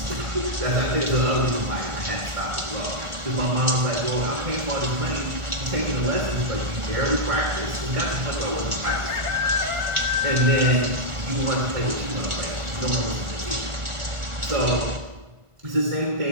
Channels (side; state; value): left; late; 1.5 ms